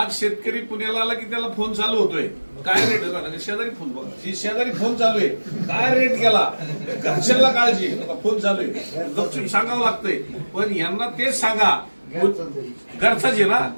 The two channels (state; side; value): inverted; both; correlation -1.00